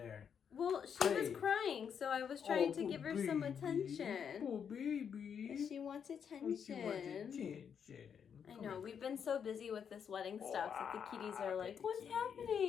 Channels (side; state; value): right; quieter; 7.5 dB